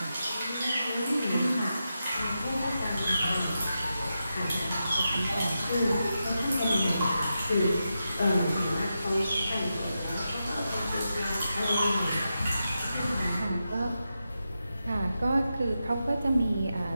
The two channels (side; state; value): both; inverted; correlation -0.89